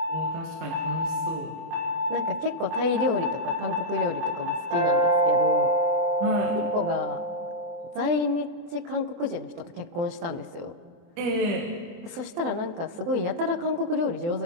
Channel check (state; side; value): late; left; 24 ms